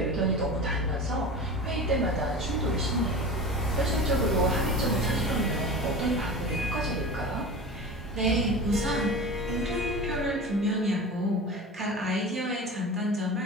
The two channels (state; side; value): normal; both; correlation 0.32